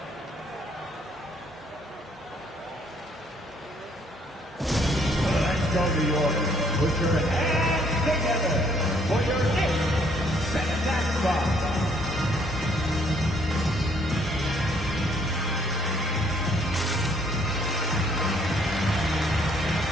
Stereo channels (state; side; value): normal; both; correlation 0.65